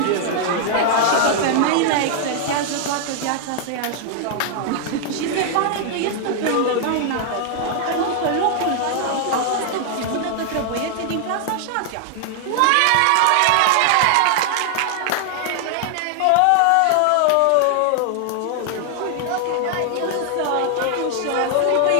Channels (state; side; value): different; both; correlation 0.00